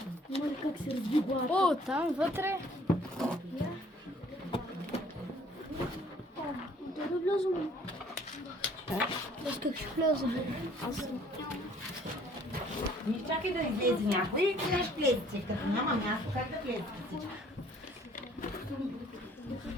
Как се разбива? О, там вътре. Да не влязам. Аз как ще вляза? Аз съм. Не чакай да излезе някой и къде ще влезете, като няма място, как да влезете всички?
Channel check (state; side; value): normal; both; correlation 0.58